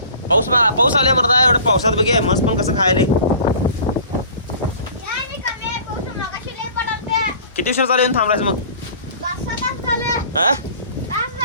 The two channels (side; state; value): both; inverted; correlation -0.45